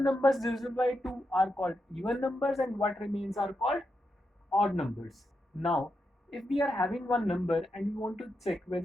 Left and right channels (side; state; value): both; normal; correlation 0.85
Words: divisible by 2 are called even numbers, and what remains are called odd numbers. Now, if we are having one number and we want to check